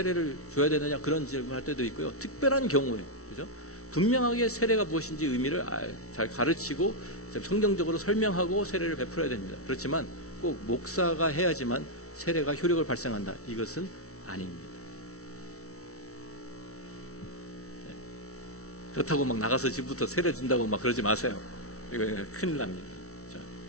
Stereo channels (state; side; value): late; right; 0.64 ms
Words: 줘야 되느냐 그런 질문할 때도 있고요. 특별한 경우에, 그죠? 분명하게 세례가 무엇인지 의미를 잘 가르치고 성경적으로 설명하고 세례를 베풀어야 됩니다. 그렇지만 꼭 목사가 해야지만 세례가 효력을 발생한다, 이것은 아닙니다. 네. 그렇다고 막 나가서 지금부터 세례 준다고 막 그러지 마세요. 이거 큰일 납니다. 자,